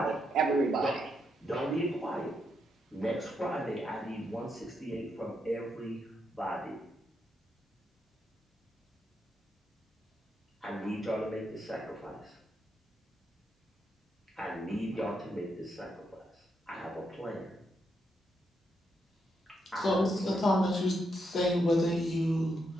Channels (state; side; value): normal; both; correlation 0.80